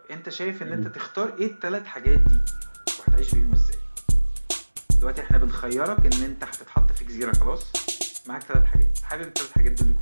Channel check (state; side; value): inverted; both; correlation -1.00